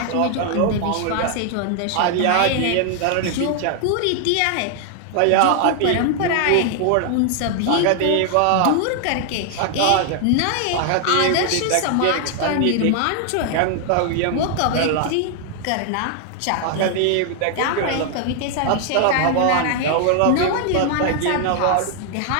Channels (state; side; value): different; both; correlation 0.00